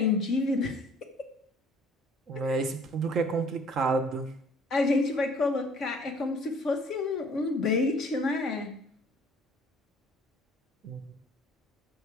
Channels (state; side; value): normal; both; correlation 0.55